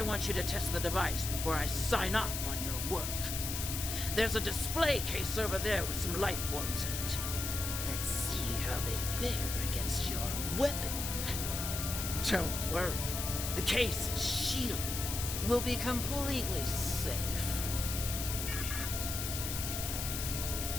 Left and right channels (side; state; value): left; noise; hiss, 3 dB below the sound